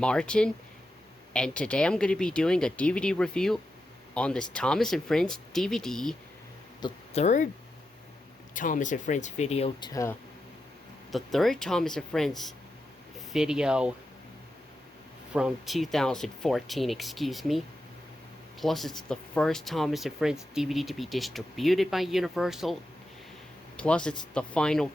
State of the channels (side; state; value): both; normal; correlation 0.88